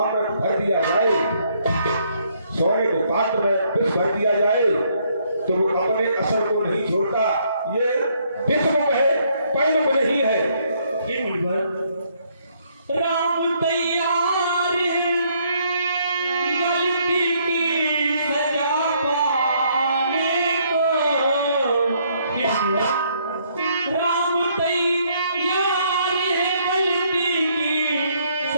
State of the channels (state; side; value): inverted; both; correlation -0.69